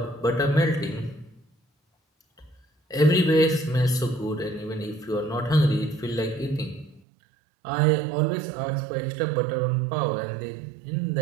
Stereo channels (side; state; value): left; drops out; at 7.0 s